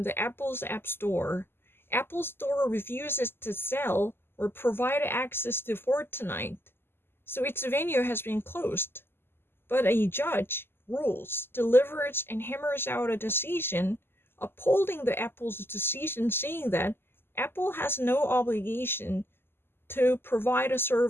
the Apple's App Store. Apple Store refuses to sell or provide access to Fortnite, so its venue has been closed. But a judge rules, delivers, and hammers out a decision upholding the Apple's decision, saying that Apple has no obligation to provide a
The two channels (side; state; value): right; late; 0.11 ms